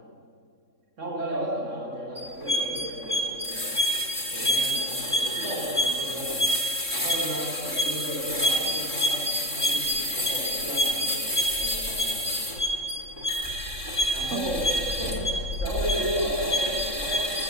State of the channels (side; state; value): left; late; 3.6 ms